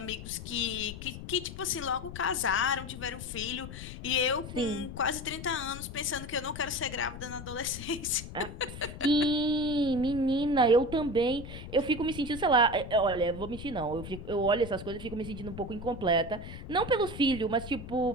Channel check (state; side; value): noise; left; rumble, 11 dB below the sound